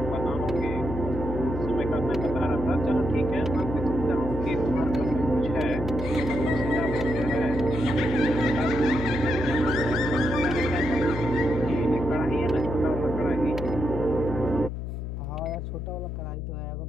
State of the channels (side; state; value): left; noise; hum, 5 dB below the sound